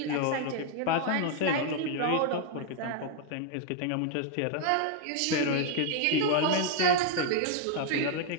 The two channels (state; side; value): different; both; correlation 0.00